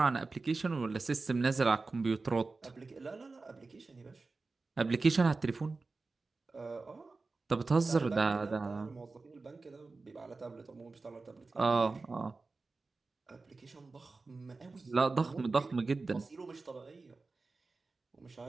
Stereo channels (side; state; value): left; quieter; 3.8 dB